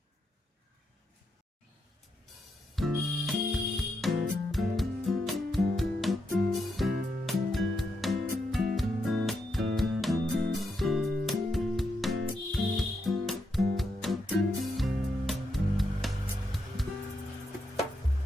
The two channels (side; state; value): both; normal; correlation 0.82